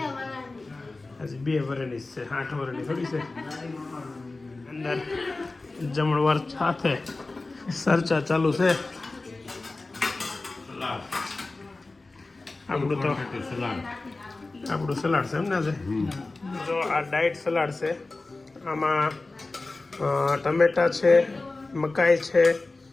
હજી 2 વર્ષની છે, 8 વર્ષની થોડી છે. અંદર જમણવાર સાથે ચર્ચા ચાલુ છે. આપણું સલાડ છે એમને છે. જો આ ડાયટ સલાડ છે. આમાં ટમેટા છે, મકાઈ છે,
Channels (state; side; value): quieter; right; 3.3 dB